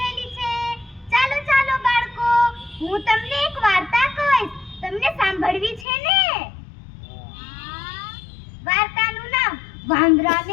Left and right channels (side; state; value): right; drops out; at 5.9 s